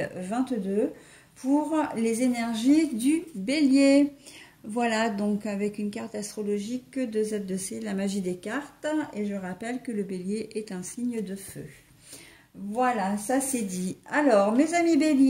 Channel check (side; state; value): both; identical; correlation 1.00